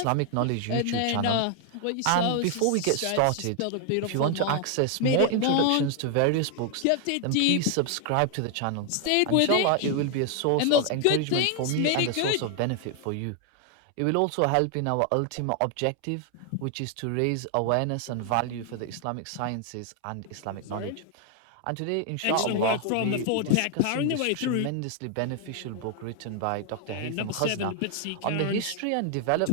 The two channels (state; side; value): different; both; correlation 0.00